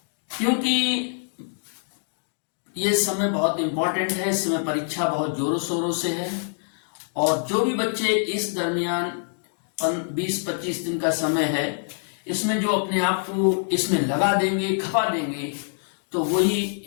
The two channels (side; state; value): right; silent; digital silence